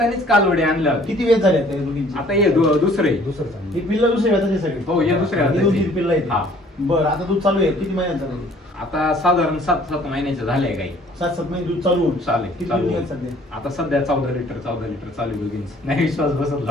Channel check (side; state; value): both; normal; correlation 0.56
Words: कालवडी आणल्या होत्या. किती वेत झाले त्या दोघींची? आता हे दुसरे ही पिल्लं दुसऱ्या वेताची सगळी? हो, हे दुसऱ्या ही वेताची. 2-3 पिल्लं आहेत. हा. बर. आता दूध चालू आहे किती महिन्यांचं झालं? आता साधारण 7 महिन्याचे झाले गाई. 7-7 महिने दूध चालू होऊन चालेल, किती चालू दूध होऊन. निघत सध्या? आता सध्या 14 लिटर चालू आहे दोघींचं. नाही विश्वास बसत